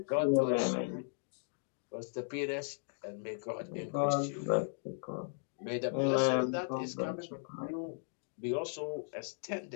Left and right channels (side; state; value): right; silent; digital silence